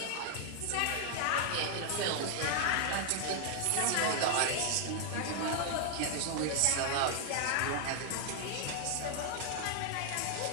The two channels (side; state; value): both; different; correlation 0.00